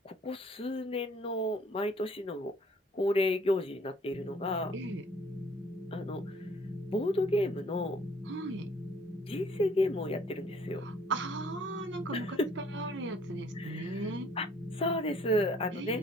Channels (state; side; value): normal; both; correlation 0.59